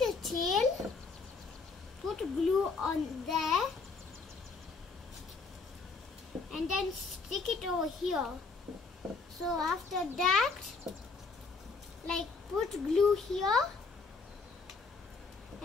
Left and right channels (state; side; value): quieter; right; 4.4 dB